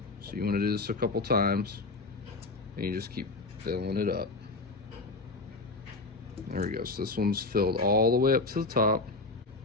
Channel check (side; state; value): right; quieter; 3.4 dB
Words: So you want to do this a couple times, and you just keep filling it up. There we go. So this one's filled all the way up to the top,